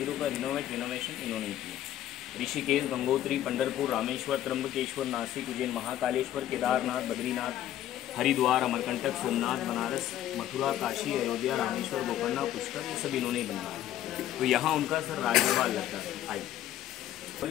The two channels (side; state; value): right; quieter; 12.4 dB